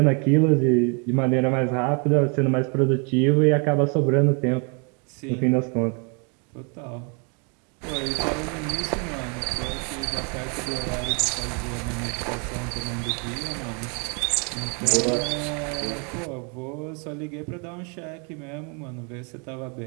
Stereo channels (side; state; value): left; quieter; 36.4 dB